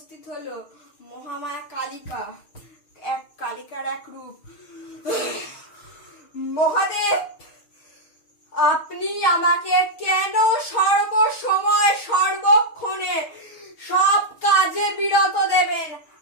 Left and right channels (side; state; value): right; late; 6.4 ms